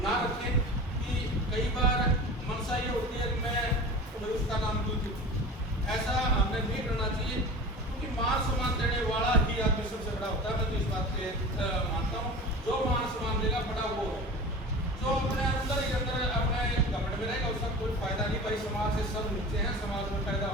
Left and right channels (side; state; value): both; normal; correlation 0.35